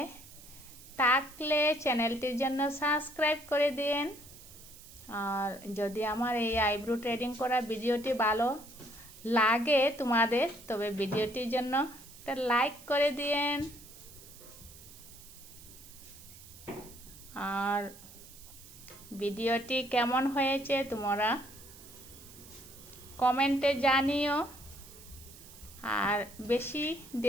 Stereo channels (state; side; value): noise; right; hiss, 19 dB below the sound